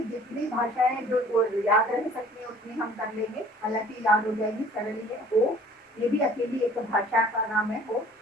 जितनी भाषाएं जो याद रह सकती है उतनी हम कर लेंगे, हालांकि याद हो जाएगी, सरल है। हो ये भी अकेली एक भाषा का नाम है, हो।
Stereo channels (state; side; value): normal; both; correlation 0.51